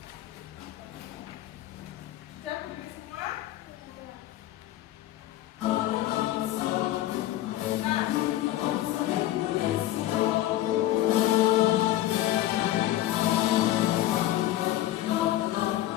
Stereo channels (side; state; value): right; quieter; 14.3 dB